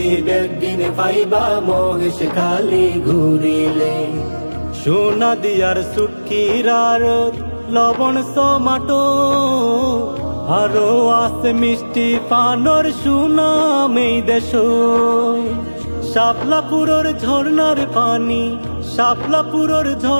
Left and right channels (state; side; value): inverted; both; correlation -1.00